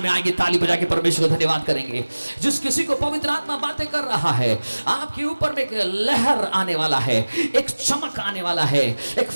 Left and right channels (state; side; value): inverted; both; correlation -1.00